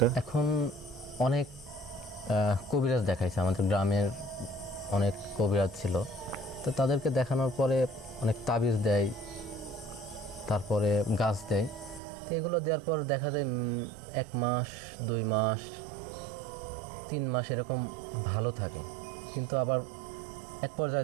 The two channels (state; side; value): drops out; left; at 12.0 s